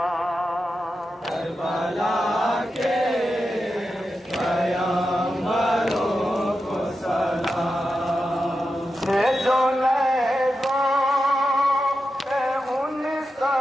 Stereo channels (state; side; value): normal; both; correlation 0.90